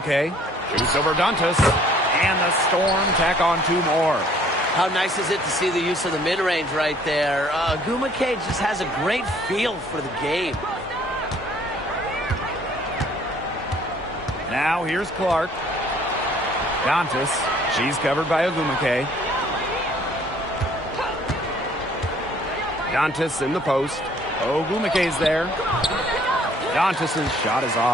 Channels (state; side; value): normal; both; correlation 0.58